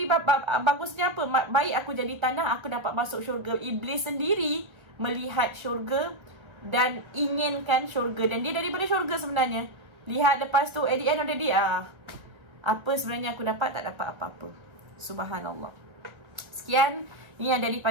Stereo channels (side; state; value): left; late; 1.3 ms